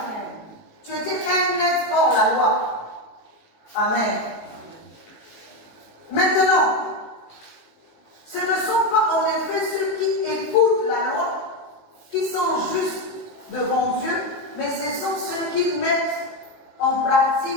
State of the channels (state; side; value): late; right; 19 ms